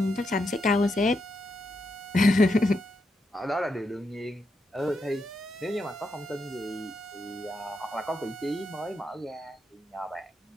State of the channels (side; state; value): both; normal; correlation 0.82